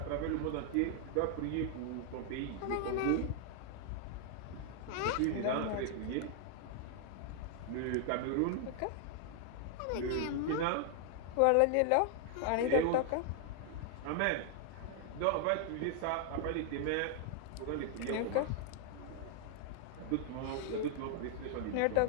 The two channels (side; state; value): both; different; correlation 0.00